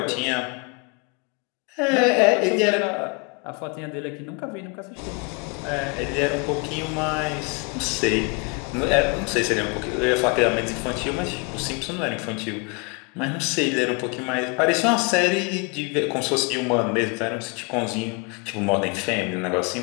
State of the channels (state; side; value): quieter; right; 31.8 dB